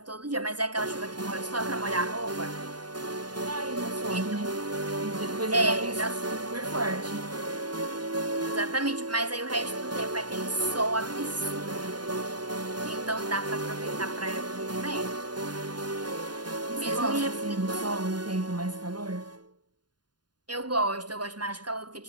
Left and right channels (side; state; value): left; late; 0.70 ms